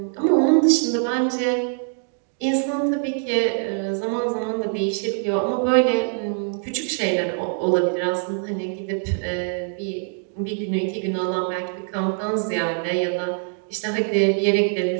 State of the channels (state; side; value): silent; left; 61 dB below the other